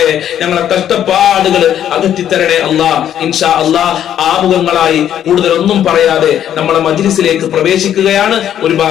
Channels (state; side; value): quieter; right; 10.4 dB